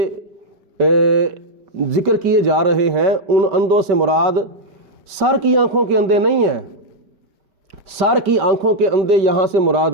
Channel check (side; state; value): left; late; 5.1 ms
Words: ذکر کیے جا رہے ہیں ان اندھوں سے مراد سر کی آنکھوں کے اندھے نہیں ہیں، سر کی آنکھوں کے اندھے یہاں سے مراد